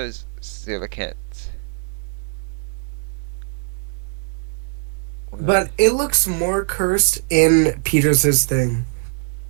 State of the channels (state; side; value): silent; left; digital silence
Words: coelacanths. Well, But it looks more cursed in Peters's thing